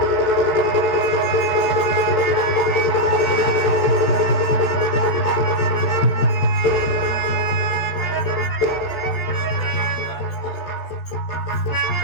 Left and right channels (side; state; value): right; late; 14 ms